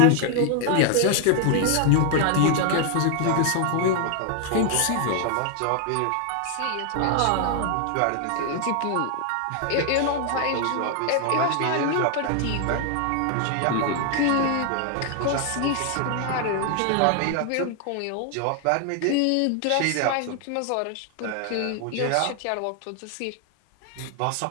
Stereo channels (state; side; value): different; both; correlation 0.00